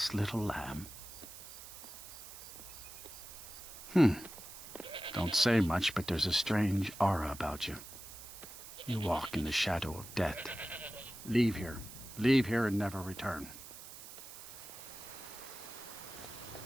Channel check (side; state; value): right; noise; hiss, 14 dB below the sound